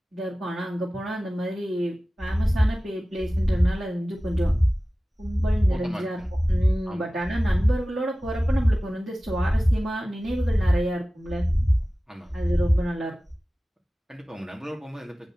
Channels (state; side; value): normal; both; correlation 0.97